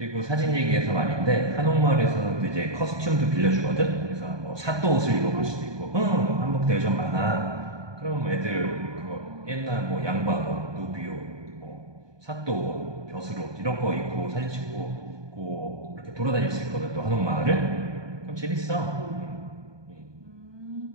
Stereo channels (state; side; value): late; left; 1.2 ms